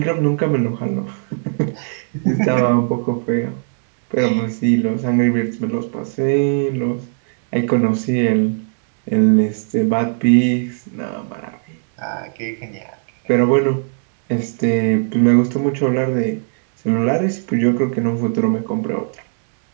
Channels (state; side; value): silent; left; digital silence